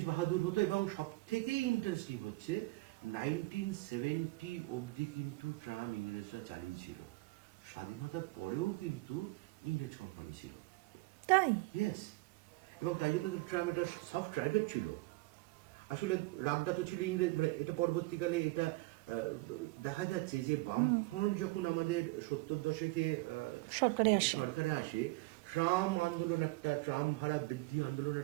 বাহাদুর হতো, এবং সব থেকেই ইন্টারেস্টিং হচ্ছে 1970 অবধি কিন্তু ট্রাম ইংরেজরা চালিয়েছিল। স্বাধীনতার পরেও কিন্তু ইংরেজ কোম্পানি ছিল। তাই ইয়েস, এবং তাই জন্য তো ট্রাম একটা সফট টার্গেট ছিল। আসলে রাগটা তো ছিল ইংরেজ, মানে এটা পরবর্তীকালে এটা দেখা যাচ্ছে যে বামফ্রন্ট যখন আমাদের 70 দশকে সরকারে আসে, ট্রাম আন্দোলন, একটা ট্রাম ভাড়া বৃদ্ধি আন্দোলন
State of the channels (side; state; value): left; quieter; 22.4 dB